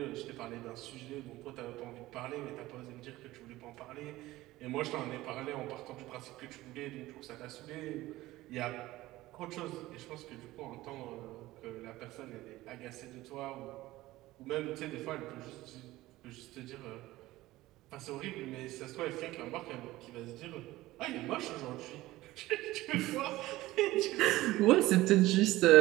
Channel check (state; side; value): quieter; left; 17.5 dB